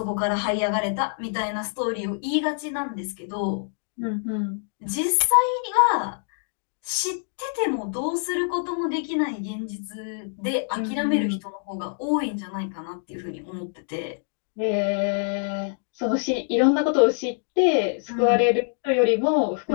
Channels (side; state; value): right; silent; digital silence